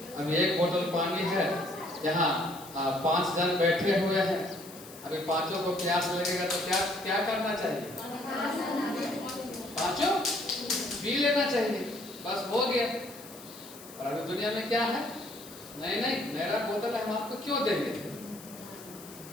अब एक बोतल पानी है, यहाँ 5 जन बैठे हुए हैं। अभी पांचों को प्यास लगेगा तो क्या क्या करना चाहिए? पांचों पी लेना चाहिए, बस हो गया। और अभी दुनिया में क्या है? नहीं नहीं, मेरा बोतल है, हम आपको क्यों देंगे?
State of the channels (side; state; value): left; noise; hiss, 17 dB below the sound